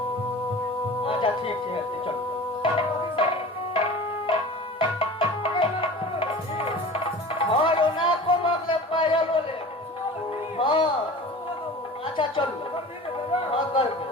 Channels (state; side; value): normal; both; correlation 0.38